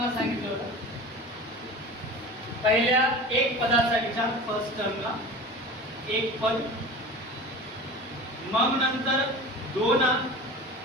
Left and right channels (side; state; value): both; normal; correlation 0.35